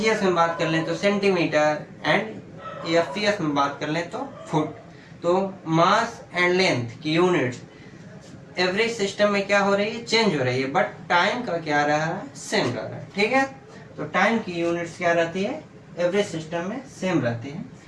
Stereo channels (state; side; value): identical; both; correlation 1.00